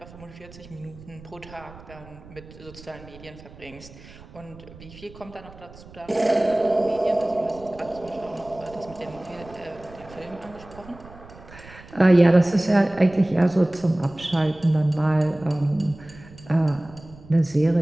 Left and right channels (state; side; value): noise; right; rumble, 20 dB below the sound